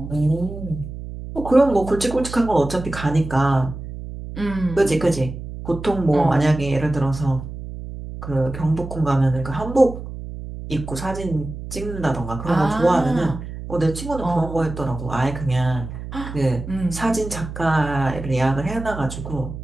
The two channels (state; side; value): noise; right; hum, 10 dB below the sound